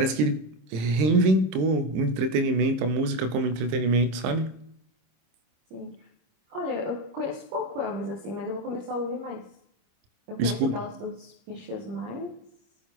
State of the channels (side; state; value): left; late; 26 ms